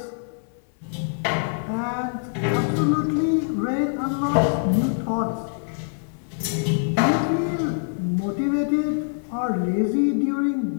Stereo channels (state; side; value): silent; right; 61 dB below the other